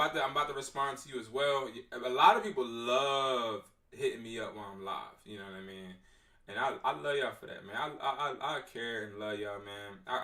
to respond to you as well. A lot of people love hitting me up while I'm live, you know what I mean? And I love y'all for that, man. I care and love y'all, man.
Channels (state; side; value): identical; both; correlation 1.00